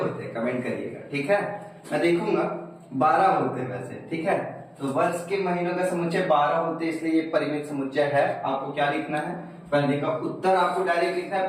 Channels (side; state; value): both; identical; correlation 1.00